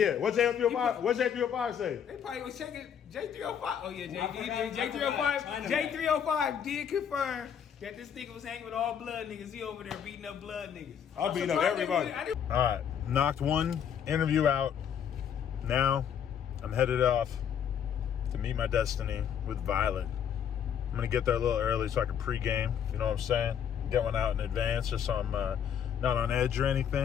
what J305 say? They probably was checking J305. Oh yeah, J305 did confirm that this nigga was hanging with all blood niggas. He over there beating up blood niggas. I'll beat up everybody. All right, knocked one interview out. Now I'm headed off to meet my destiny with Violet. I'm gonna get there a little early so I can pregame. You know what I'm saying? Get one out in advance just so I'm not on edge or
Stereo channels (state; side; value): quieter; right; 8.4 dB